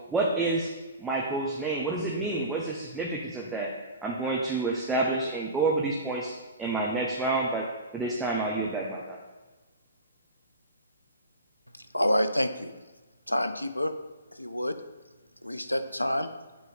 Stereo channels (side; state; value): both; inverted; correlation -0.36